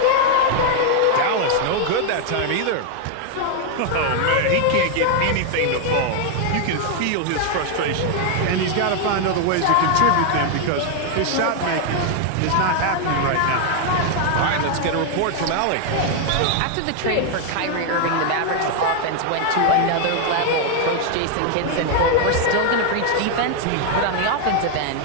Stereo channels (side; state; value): both; different; correlation 0.00